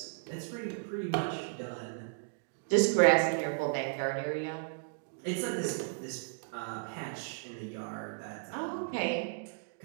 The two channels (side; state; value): left; silent; digital silence